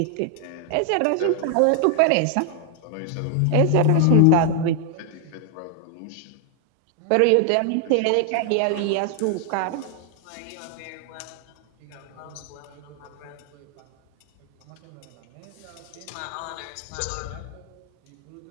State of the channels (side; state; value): both; different; correlation 0.00